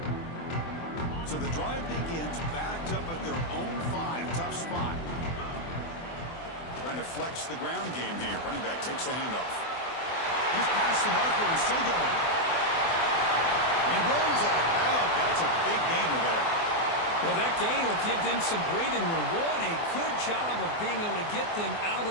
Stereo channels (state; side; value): late; right; 24 ms